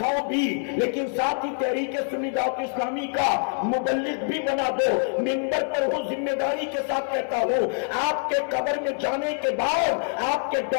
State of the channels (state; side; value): silent; right; 58 dB below the other